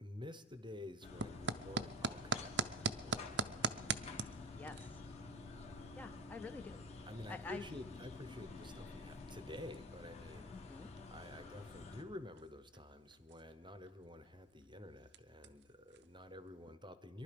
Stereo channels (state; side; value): normal; both; correlation 0.23